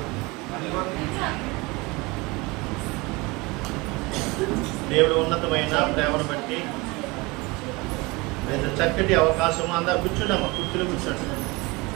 దేవుడు ఉన్నతమైన ప్రేమను బట్టి చక్కటి అవకాశం. అందరు కూర్చుండమ్మా, కుర్చీలో కూర్చోండి,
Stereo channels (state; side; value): quieter; left; 24.5 dB